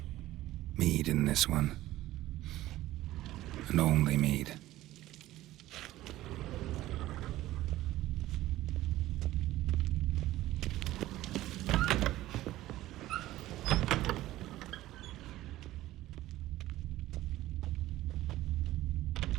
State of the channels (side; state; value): left; quieter; 15.6 dB